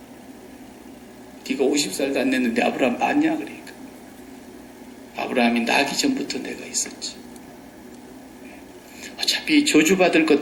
네가 50살도 안 됐는데 아브라함 봤냐 그러니까. 아브라함이 나기 전부터 내가 있었지. 어차피 저주받을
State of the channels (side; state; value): both; identical; correlation 1.00